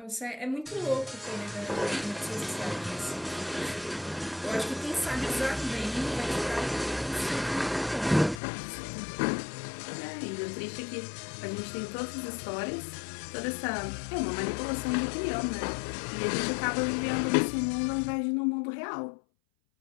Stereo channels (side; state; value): right; drops out; at 8.4 s